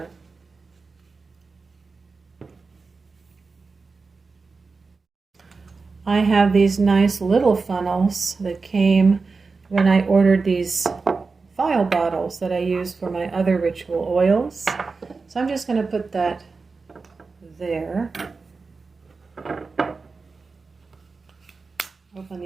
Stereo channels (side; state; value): left; quieter; 4.3 dB